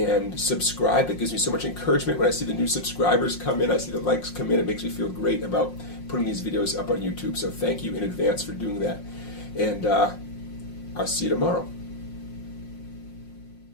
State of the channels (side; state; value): right; late; 5.6 ms